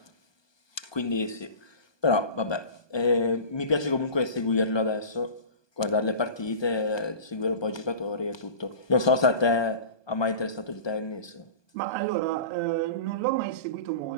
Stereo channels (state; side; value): late; right; 1.2 ms